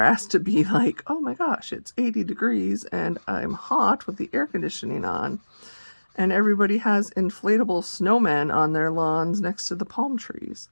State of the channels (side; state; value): both; inverted; correlation -1.00